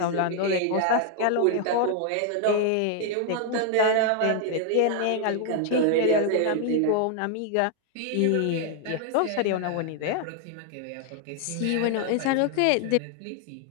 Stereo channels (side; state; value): both; different; correlation 0.00